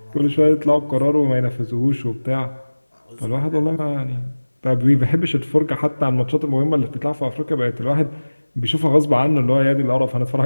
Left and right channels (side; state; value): both; inverted; correlation -1.00